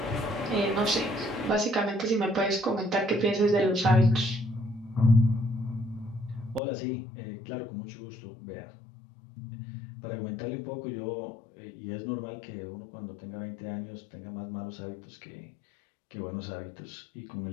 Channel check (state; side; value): drops out; right; at 6.6 s